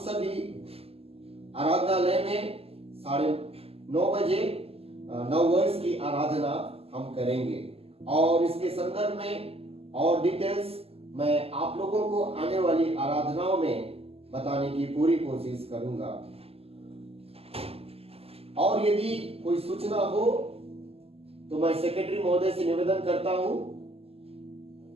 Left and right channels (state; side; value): late; left; 0.29 ms